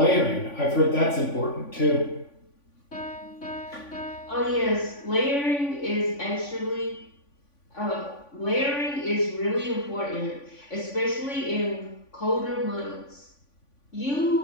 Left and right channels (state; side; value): late; right; 3.5 ms